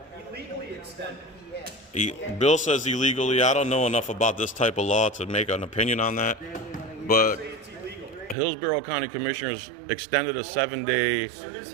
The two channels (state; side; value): drops out; left; at 8.3 s